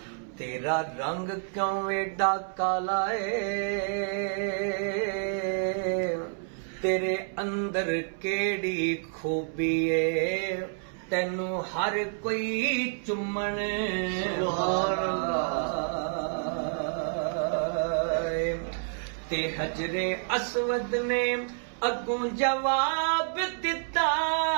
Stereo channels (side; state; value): left; silent; 59 dB below the other